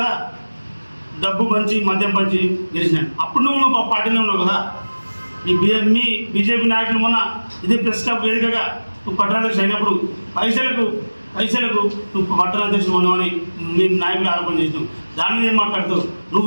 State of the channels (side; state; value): both; inverted; correlation -1.00